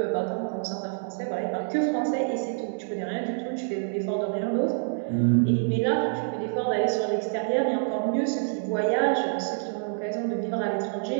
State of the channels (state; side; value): silent; left; digital silence